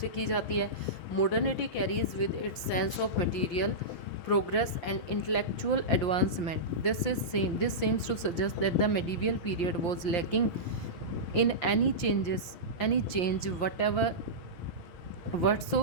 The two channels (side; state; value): right; late; 6.3 ms